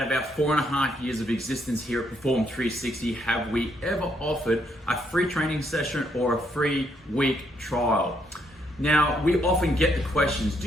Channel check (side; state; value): both; normal; correlation 0.74